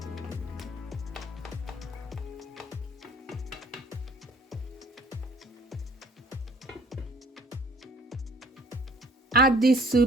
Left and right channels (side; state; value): both; normal; correlation 0.54